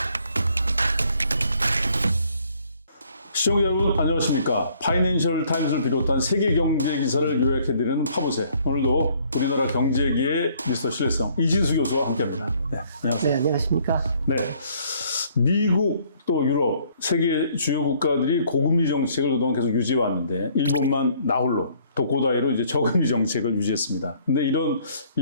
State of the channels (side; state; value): both; inverted; correlation -0.62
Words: 시청자 여러분 안녕하십니까. 파이낸셜 타임스를 비롯한 세계 경제 기사를 요약해드리는 파보세. 오늘도 우리나라 경제계의 미스터 신뢰성 이진수 교수와 함께합니다. 네, 안녕하세요. 네, 안녕하십니까. 네, 미국 또 유럽 세계 주요 국가들이 고금리 정책을 그동안 계속 유지해 왔는데 일본만 나홀로 독고다이로 이제 저금리 정책을 유지했습니다. 근데 이런